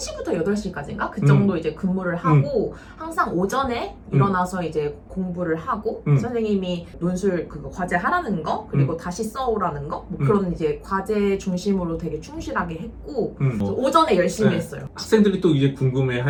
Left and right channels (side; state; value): both; identical; correlation 1.00